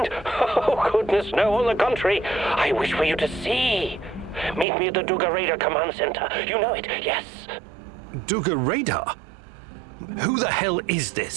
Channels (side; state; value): left; drops out; at 4.7 s